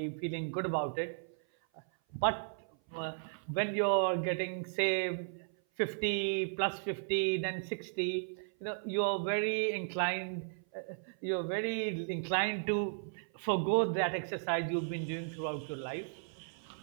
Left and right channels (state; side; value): silent; left; 54 dB below the other